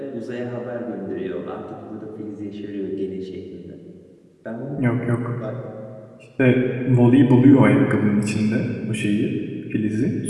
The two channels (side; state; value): both; identical; correlation 1.00